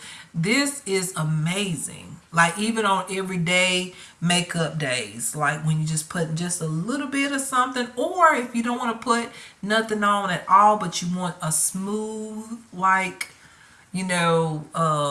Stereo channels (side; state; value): both; identical; correlation 1.00